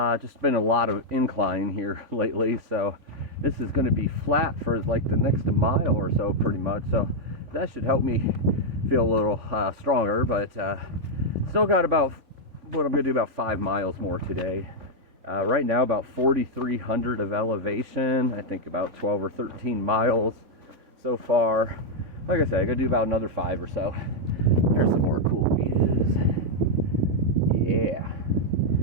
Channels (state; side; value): late; left; 3.6 ms